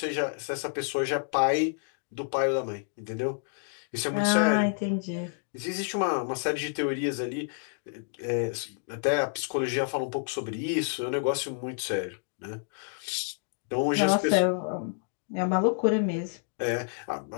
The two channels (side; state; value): right; silent; digital silence